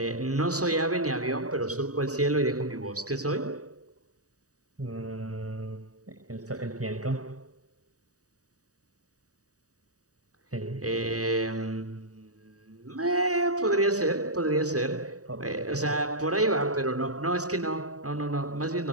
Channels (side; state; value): left; late; 0.66 ms